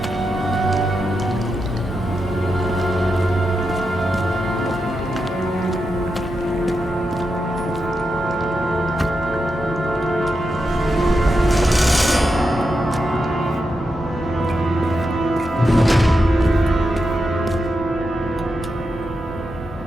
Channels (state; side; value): normal; both; correlation 0.87